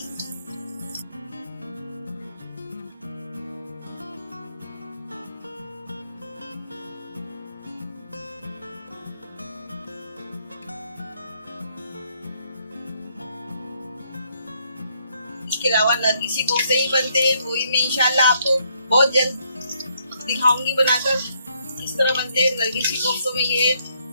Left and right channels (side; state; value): both; inverted; correlation -0.71